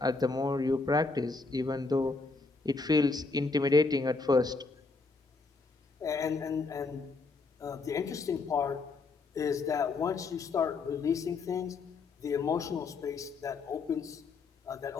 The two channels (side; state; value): right; quieter; 4.0 dB